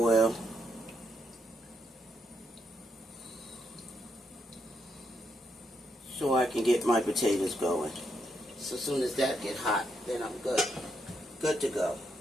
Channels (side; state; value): both; normal; correlation 0.79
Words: So I can get my potatoes going. So as soon as that get hot, then I'm good. Good to go.